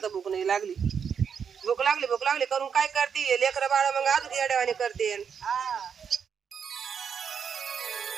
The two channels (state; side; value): quieter; left; 7.0 dB